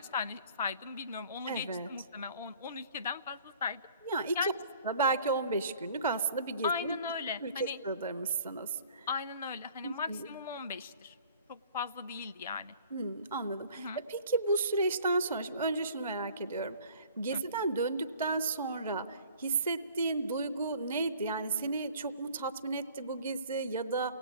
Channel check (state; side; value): inverted; both; correlation -0.51